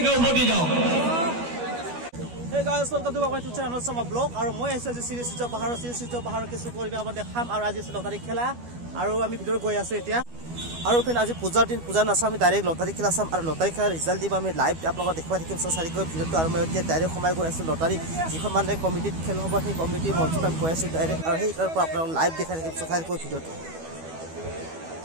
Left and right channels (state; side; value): late; left; 12 ms